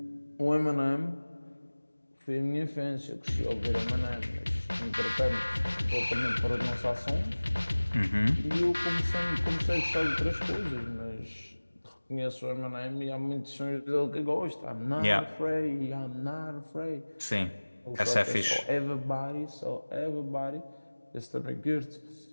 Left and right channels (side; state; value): both; inverted; correlation -1.00